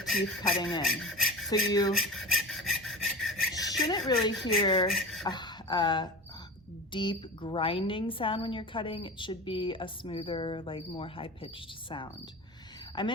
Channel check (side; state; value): both; normal; correlation 0.31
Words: cutting in. So you shouldn't really hear a deep grinding sound when you're cutting. It should be a smoother, like more high-pitched sound. I'm